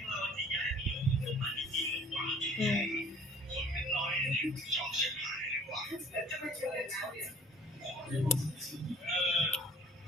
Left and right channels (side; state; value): both; normal; correlation 0.52